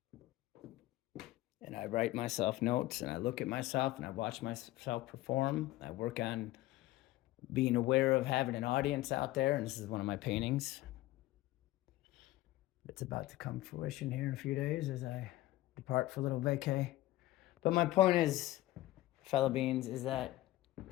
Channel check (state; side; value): quieter; right; 16.7 dB